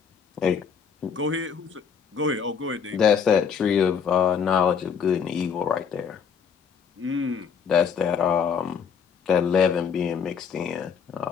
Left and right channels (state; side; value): quieter; right; 6.8 dB